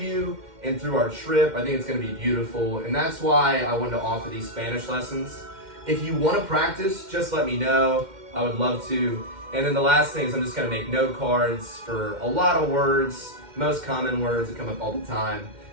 and through our trip. I think it's going to be beautiful. And that's why I wanted to offer these Spanish lessons. If you want to practice, just let me know. I would love to. And then the last thing is I'm just going to make note cards for a lot of words, most common words that come up all the time.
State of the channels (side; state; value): left; late; 2.1 ms